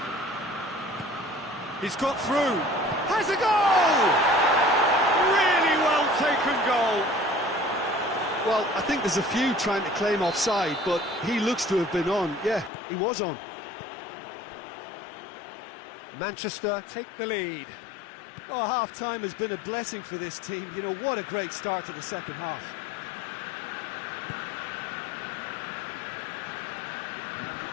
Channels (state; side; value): drops out; right; at 12.7 s